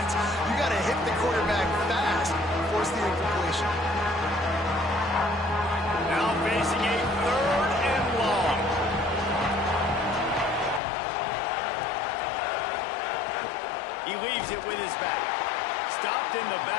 You got to hit the quarterback fast and force the incompletion. Now facing a third and long. He leaves it with his back. Stopped in the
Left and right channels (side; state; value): right; drops out; at 10.8 s